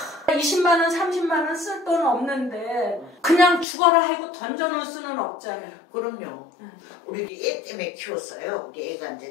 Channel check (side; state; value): right; drops out; at 3.7 s